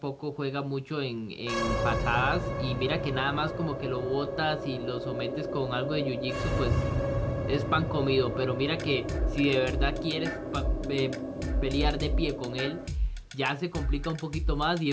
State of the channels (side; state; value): both; identical; correlation 1.00